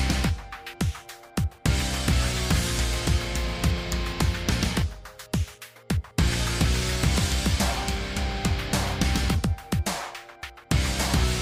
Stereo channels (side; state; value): both; identical; correlation 1.00